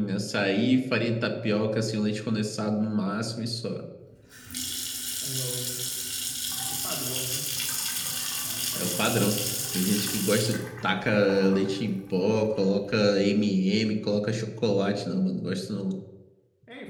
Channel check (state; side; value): identical; both; correlation 1.00